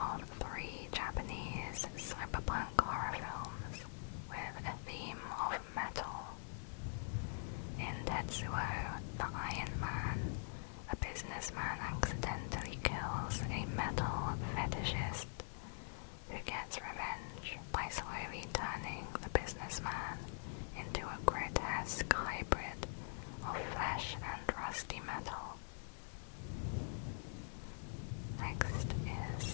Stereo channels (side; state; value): right; silent; digital silence